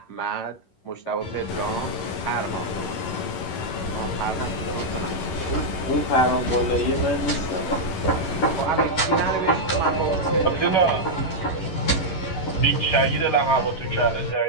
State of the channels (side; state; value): right; late; 11 ms